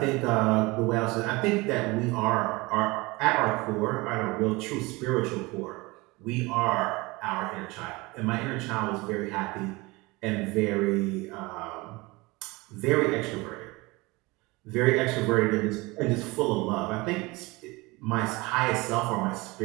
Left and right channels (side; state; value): left; quieter; 23.4 dB